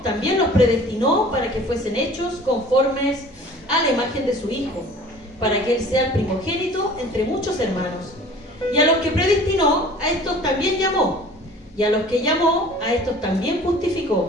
también los predestinó para que fuesen hechos conformes a la imagen de su Hijo, para que Él sea el primogénito entre muchos hermanos. Y a los que predestinó, a estos también llamó. Y a los que llamó, a estos también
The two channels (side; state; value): both; normal; correlation 0.46